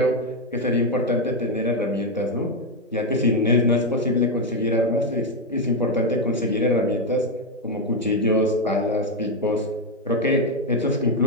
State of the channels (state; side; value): normal; both; correlation 0.05